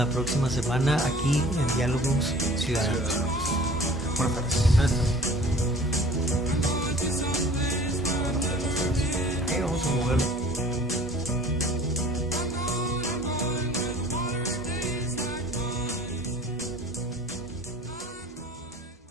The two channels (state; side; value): normal; both; correlation 0.47